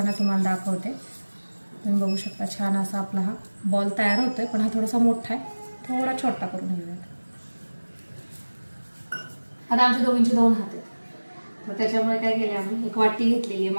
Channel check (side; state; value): both; inverted; correlation -1.00